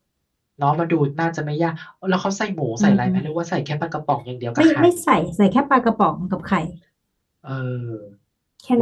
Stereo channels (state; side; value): identical; both; correlation 1.00